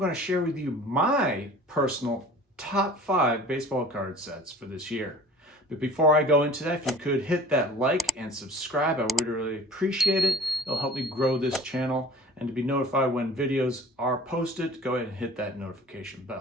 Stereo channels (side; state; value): both; normal; correlation 0.45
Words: to share with you my personal top 5 baseball card sets for this year. But before I go into that, if you could hit that like and subscribe, I would really appreciate it. It'll help me grow this channel, and to be notified when videos are posted, go ahead and hit that notification